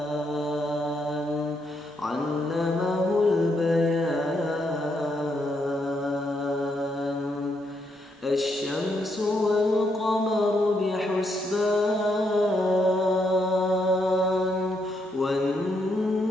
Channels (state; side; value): normal; both; correlation 0.77